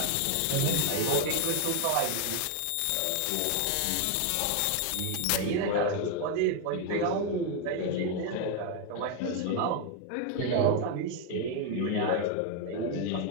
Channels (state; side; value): different; both; correlation 0.01